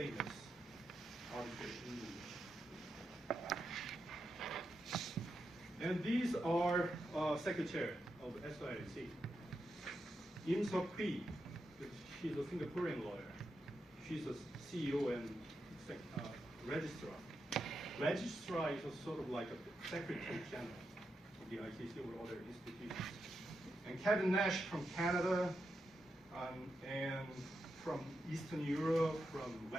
arbitration leaders. And these are secretary of SIAC. Im Seok Hui, she's a Singaporean lawyer. She's a CEO and registrar. registrar is a sort of like a secretary general of the ICC or other institutions. And Kevin Nash from Canada, and from Eastern Europe, from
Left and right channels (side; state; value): both; normal; correlation 0.86